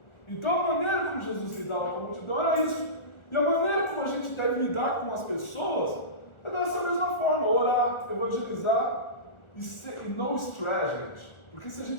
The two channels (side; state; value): right; late; 1.4 ms